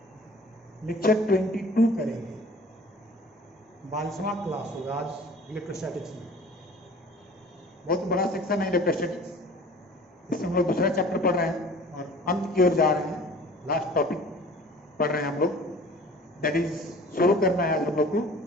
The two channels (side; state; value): both; normal; correlation 0.46